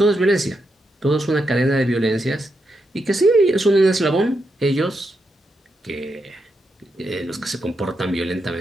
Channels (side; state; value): both; normal; correlation 0.83